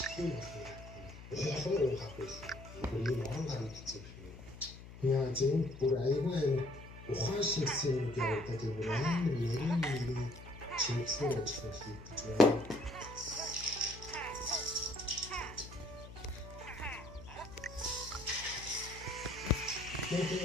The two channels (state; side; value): noise; left; hum, 15 dB below the sound